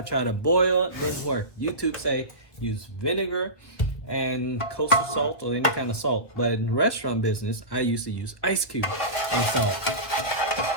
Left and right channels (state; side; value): late; right; 1.5 ms